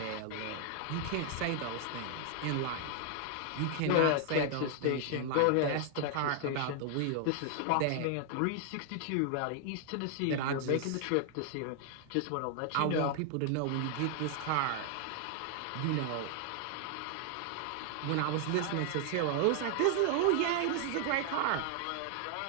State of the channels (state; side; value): different; both; correlation 0.00